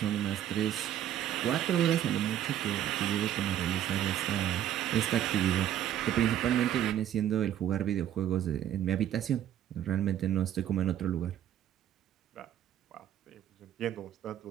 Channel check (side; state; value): left; quieter; 11.2 dB